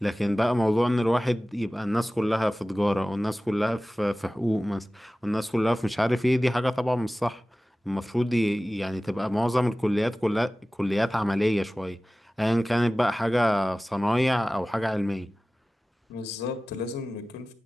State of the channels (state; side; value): normal; both; correlation 0.97